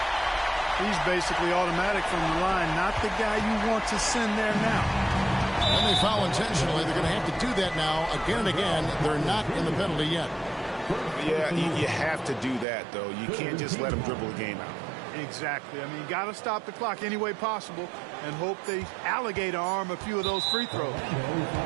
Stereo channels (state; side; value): drops out; left; at 12.7 s